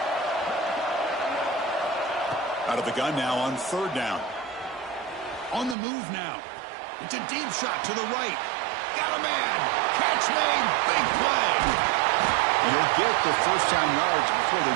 Out of the gun now on 3rd down. On the move now. It's a deep shot to the right. Got a man. Catch made. Big play. And he'll get the first down yards before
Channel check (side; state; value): left; drops out; at 5.8 s